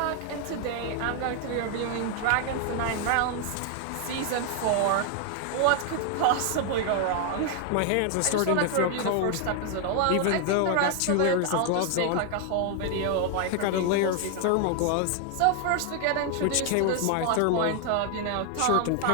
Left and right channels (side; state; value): both; different; correlation 0.00